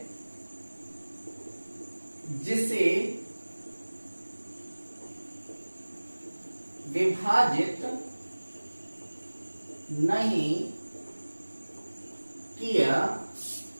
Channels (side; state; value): both; inverted; correlation -1.00